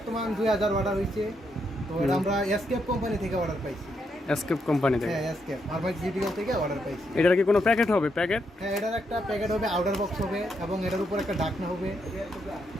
2000 অর্ডার হয়েছে। তো এটা আমরা এসকেপ কোম্পানি থেকে অর্ডার পাইছি। এসকেপ কোম্পানি থেকে? হ্যাঁ, এসকেপ ফার্মাসিউটিক্যাল থেকে অর্ডার পাইছি। এটার কি কোনো প্যাকেট হবে? প্যাকেট? হ্যাঁ, এটার একটা প্যাকেট হবে, আউটার বক্স হবে এবং এটার উপর একটা ঢাকনা হবে।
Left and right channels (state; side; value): normal; both; correlation 0.79